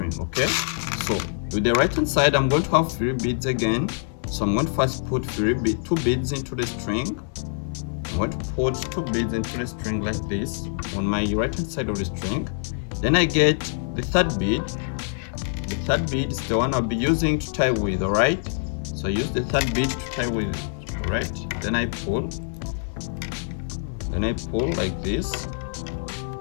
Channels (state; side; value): silent; right; 62 dB below the other